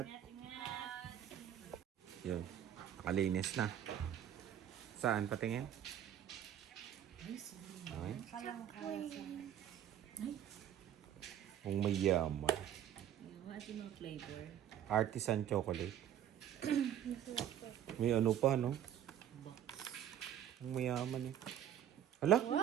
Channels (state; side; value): quieter; left; 10.2 dB